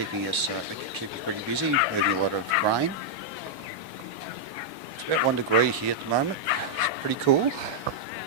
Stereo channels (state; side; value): normal; both; correlation -0.06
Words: us pretty busy, moving a lot of grain. It's about 1 degree here at the moment. It's pretty cool.